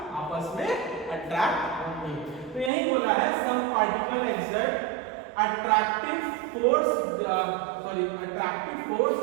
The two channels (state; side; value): drops out; left; at 2.7 s